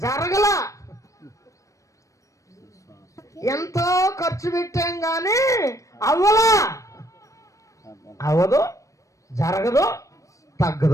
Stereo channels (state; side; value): late; right; 0.16 ms